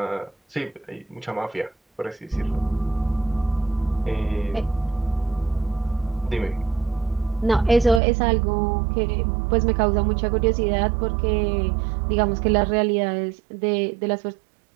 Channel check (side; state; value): left; drops out; at 8.0 s